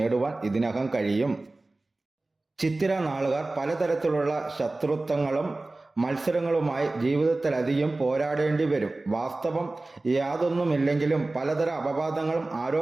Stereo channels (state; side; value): quieter; left; 3.0 dB